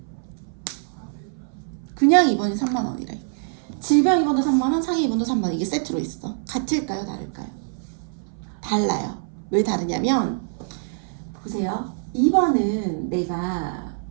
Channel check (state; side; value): silent; left; 59 dB below the other